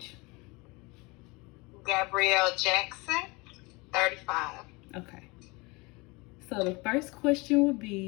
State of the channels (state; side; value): quieter; right; 25.9 dB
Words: Gabrielle Jackson, 35. Okay. So the first question would